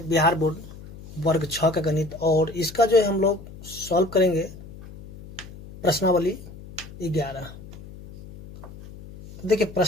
बिहार बोर्ड वर्ग 6 का गणित, और इसका जो है हम लोग सॉल्व करेंगे प्रश्नावली 11। तो देखिए,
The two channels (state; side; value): noise; left; hum, 16 dB below the sound